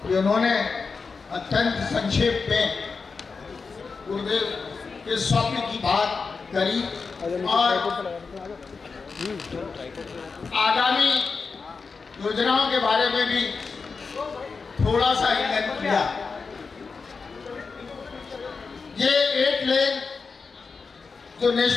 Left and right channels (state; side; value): quieter; right; 4.8 dB